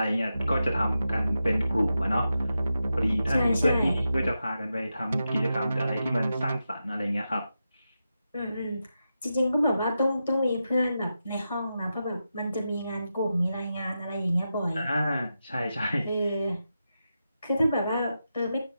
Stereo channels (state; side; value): inverted; both; correlation -0.89